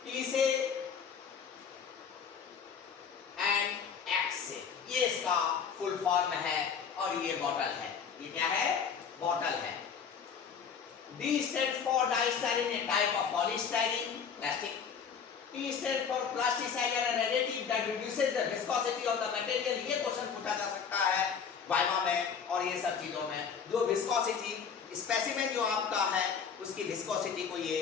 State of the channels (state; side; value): quieter; right; 6.7 dB